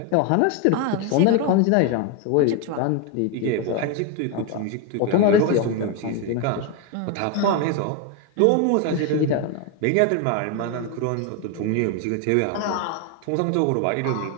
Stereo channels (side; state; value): both; different; correlation 0.02